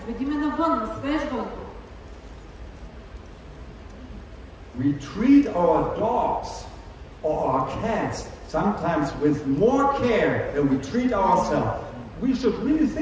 ме навън, на свеж въздух. We treat our dogs or our cats sometimes with more care than we treat ourselves. We should really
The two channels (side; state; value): both; identical; correlation 1.00